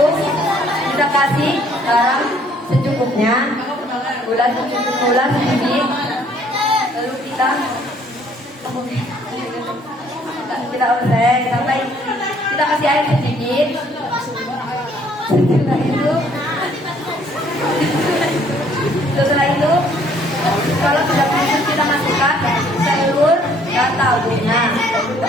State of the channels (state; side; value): normal; both; correlation 0.62